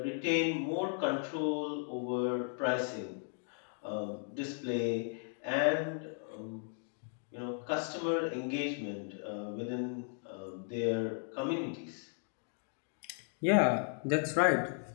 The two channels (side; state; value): right; silent; 54 dB below the other